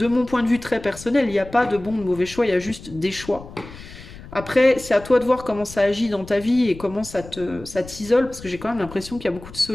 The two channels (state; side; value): noise; left; rumble, 16 dB below the sound